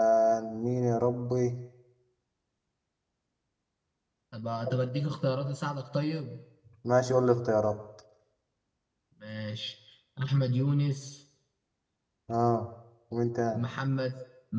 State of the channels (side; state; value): both; identical; correlation 1.00